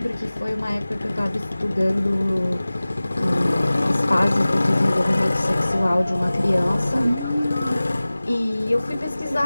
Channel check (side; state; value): both; inverted; correlation -0.98